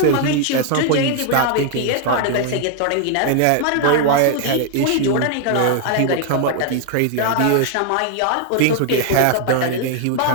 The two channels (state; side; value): different; both; correlation 0.00